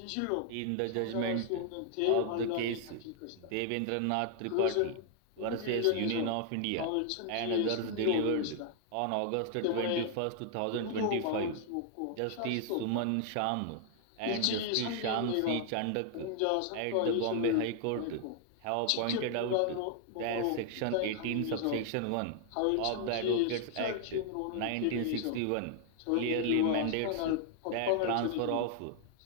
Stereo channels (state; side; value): different; both; correlation 0.00